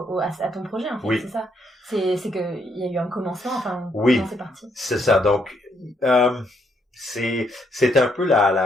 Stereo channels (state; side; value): normal; both; correlation 0.73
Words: à ton projet, en fait, c'est ça. C'est que il y a eu un commencement, comment c'est parti. C'est ça. Donc, c'est un peu